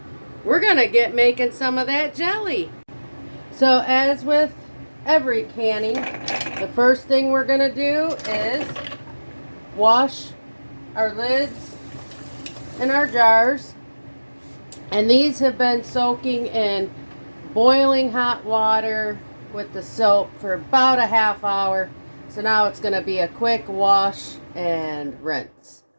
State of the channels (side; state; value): both; inverted; correlation -1.00